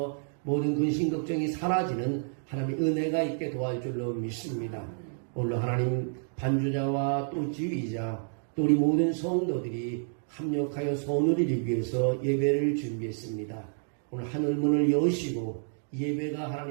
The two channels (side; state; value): left; silent; digital silence